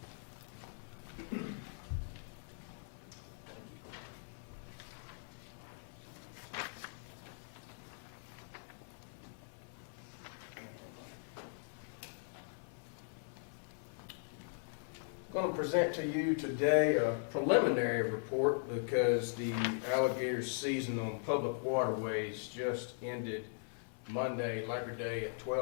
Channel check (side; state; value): right; silent; 51 dB below the other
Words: I'm going to present to you today a preliminary report because the alligator season on public waterways just ended Monday, Labor Day at